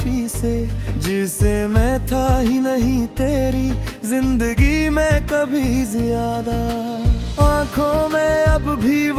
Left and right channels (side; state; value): both; identical; correlation 1.00